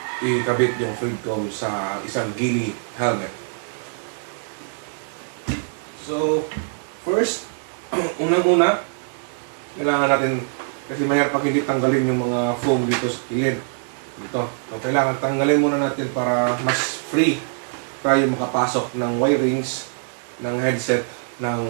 ikabit yung Freedcom sa isang ghillie helmet. So, first, unang-una, kailangan natin, kasi mahirap pag hindi tanggalin yung mga foam dito sa kilid. Dito. So, kailangan tanggalin muna natin para mas free tayo makapasok ng wirings ng headset ng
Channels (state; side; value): silent; left; digital silence